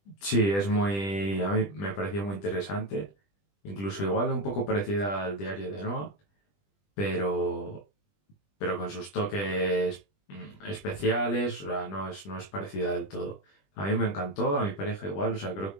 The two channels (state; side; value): late; right; 20 ms